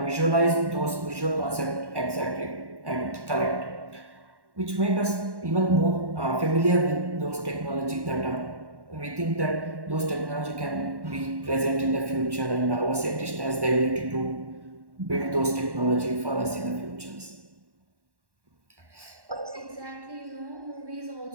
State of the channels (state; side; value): late; left; 1.1 ms